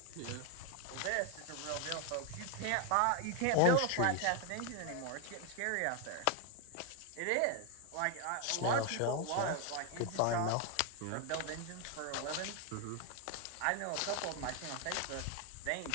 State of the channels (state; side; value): different; both; correlation 0.01